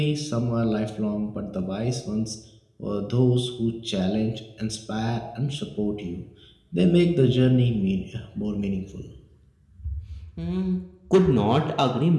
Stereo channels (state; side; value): identical; both; correlation 1.00